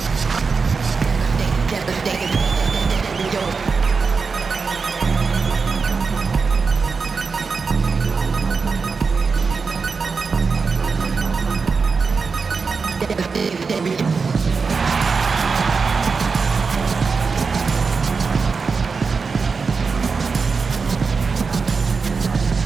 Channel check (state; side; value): quieter; left; 4.9 dB